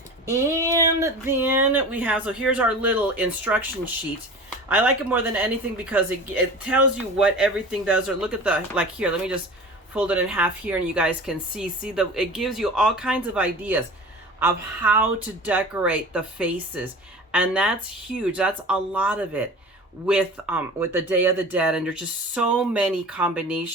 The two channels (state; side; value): normal; both; correlation 0.37